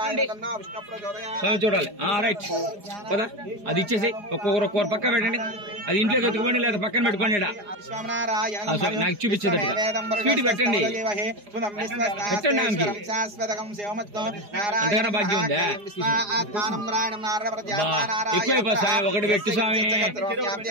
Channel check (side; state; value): left; late; 4.9 ms